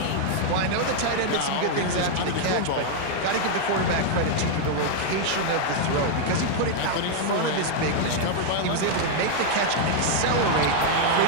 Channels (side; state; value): both; different; correlation 0.00